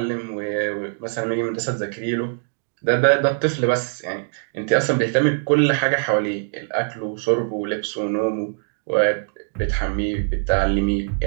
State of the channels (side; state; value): left; silent; digital silence